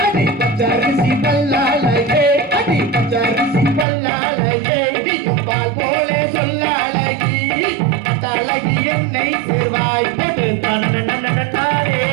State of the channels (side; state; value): left; drops out; at 3.9 s